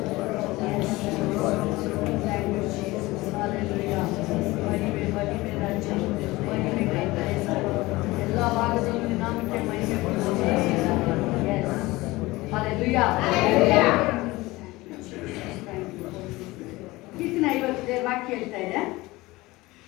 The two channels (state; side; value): quieter; right; 20.4 dB